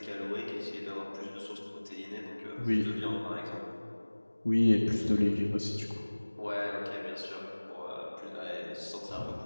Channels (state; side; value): inverted; both; correlation -1.00